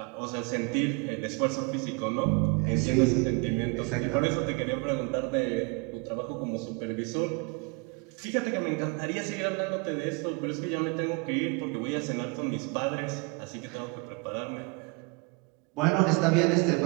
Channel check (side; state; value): left; quieter; 29.6 dB